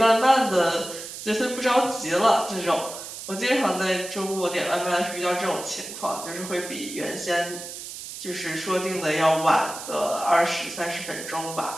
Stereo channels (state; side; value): noise; right; hiss, 10 dB below the sound